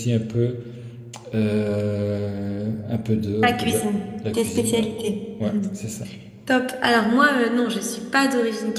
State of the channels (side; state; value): both; identical; correlation 1.00